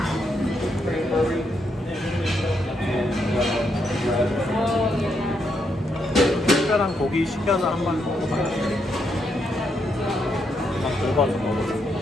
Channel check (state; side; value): normal; both; correlation 0.78